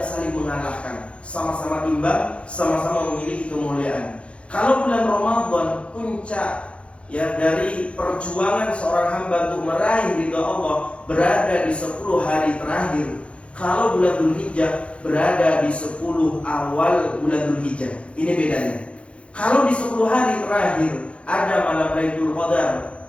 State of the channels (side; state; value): right; late; 0.060 ms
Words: saling mengalahkan, sama-sama imbang, sama-sama memiliki kemuliaan. Kalau bulan Ramadan puncak ya dari perjuangan seorang hamba untuk meraih ridha Allah berada di 10 hari terakhir. Kalau bulan Dzulhijjah berada di 10 awal bulan Dzulhijjah. Ini bedanya. Kalau di 10 hari terakhir ada malam Lailatul Qadar,